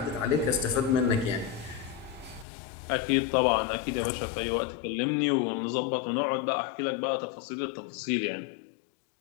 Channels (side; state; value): right; drops out; at 2.5 s